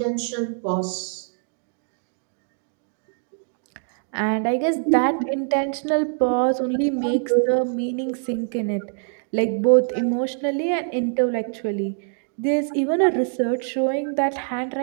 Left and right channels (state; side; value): silent; left; digital silence